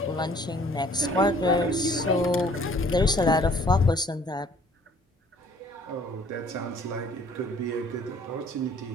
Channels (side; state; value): both; normal; correlation 0.56